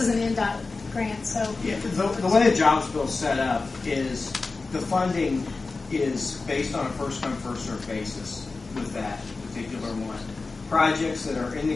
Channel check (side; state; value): right; quieter; 3.8 dB